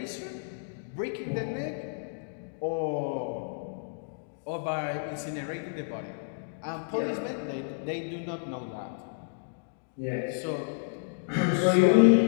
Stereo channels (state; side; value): silent; right; digital silence